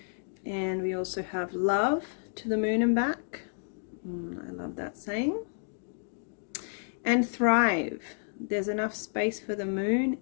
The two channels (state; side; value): silent; right; digital silence